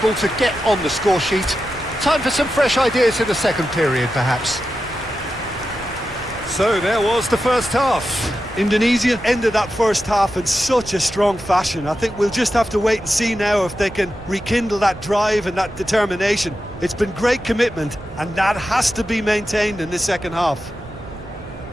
to get on the score sheet. Time for some fresh ideas in the second period, perhaps. So there was the first half. Indonesia ended that first half in such a strong fashion. I think we'll just have to wait and see now if they can rekindle that drive and that determination. It's been great commitment, and that has to be maintained in this second half.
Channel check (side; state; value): right; noise; rumble, 17 dB below the sound